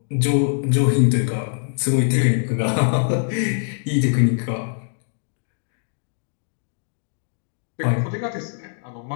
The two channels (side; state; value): right; silent; digital silence